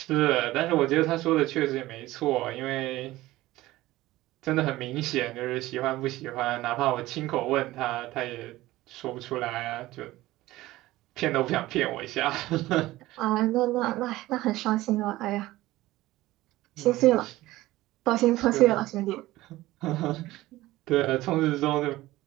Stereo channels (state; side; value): quieter; left; 17.2 dB